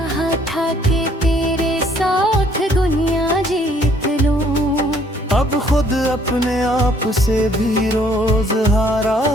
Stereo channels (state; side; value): normal; both; correlation 0.62